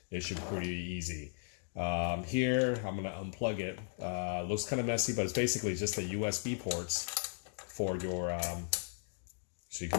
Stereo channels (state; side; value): silent; right; digital silence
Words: it should be pretty easy. Here, I'm gonna unplug it. Looks kind of messy, but it's basically just the USB ports for your, so you